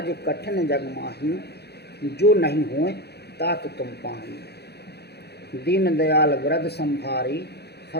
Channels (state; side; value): late; right; 0.48 ms